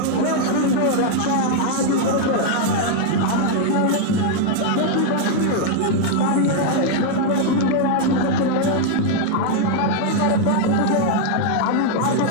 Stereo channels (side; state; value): both; different; correlation 0.00